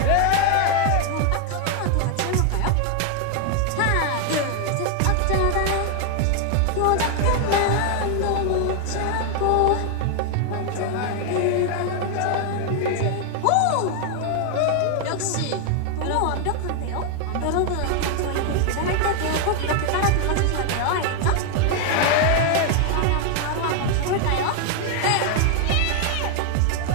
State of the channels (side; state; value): both; different; correlation 0.00